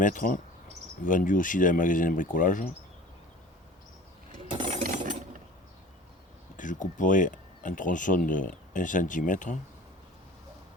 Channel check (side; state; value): both; normal; correlation 0.43